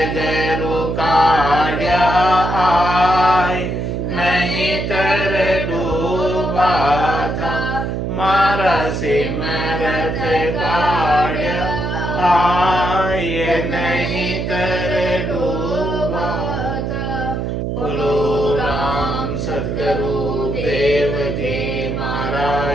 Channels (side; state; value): right; noise; hum, 2 dB below the sound